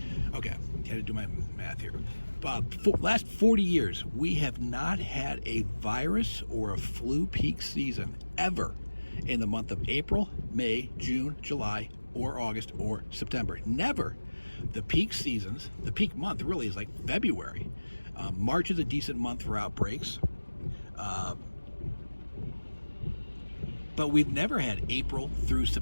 Okay, had to do my math here. Last 40 years, we have not had a virus or a flu peak season ever in the month of April, May, June, July, or August, or September. Never. The peak seasons, the peak month really is like February. March is a decent month for outbreaks. But we've never had April through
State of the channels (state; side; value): inverted; both; correlation -1.00